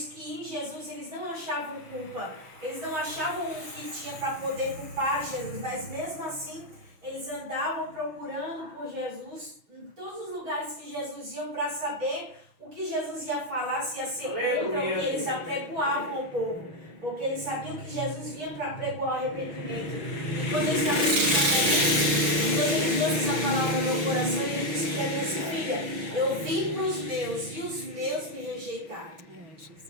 que em Jesus eles não achavam culpa, eles não achavam o que tinha para poder culpar Jesus, mas mesmo assim eles andavam procurando por Jesus em todos os lugares que Jesus ia para saber o que Jesus ia falar, se ia ser contra o que eles apregoavam ao povo, porque eles sabiam que Jesus vinha para pregoar o arrependimento. E quando ele estava escutando, quando ele trouxe essa palavra no meu coração, ele disse para mim assim: filha, eu vim para os meus e os meus me rejeitaram.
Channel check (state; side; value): late; left; 6.1 ms